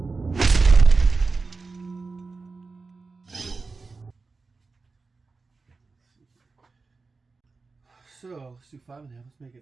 So let's do 5.5. Let's make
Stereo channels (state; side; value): quieter; left; 4.1 dB